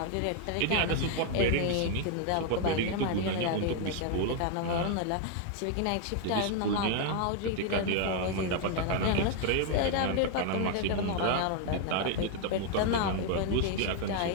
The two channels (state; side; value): different; both; correlation 0.00